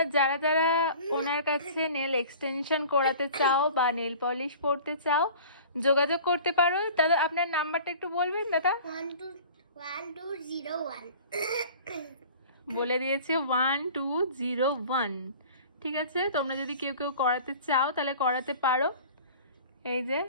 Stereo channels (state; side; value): inverted; both; correlation -0.43